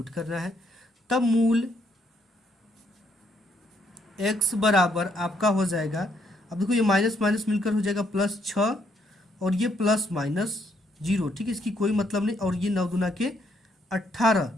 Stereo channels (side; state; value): both; normal; correlation 0.72